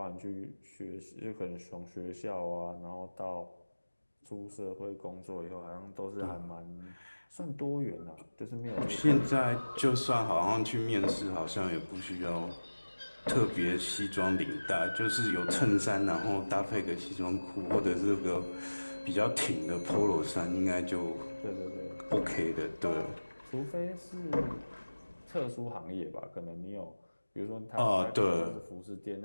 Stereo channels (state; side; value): inverted; both; correlation -1.00